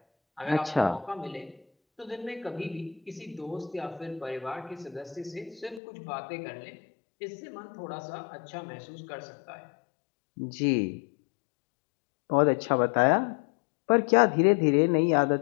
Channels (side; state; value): right; drops out; at 5.8 s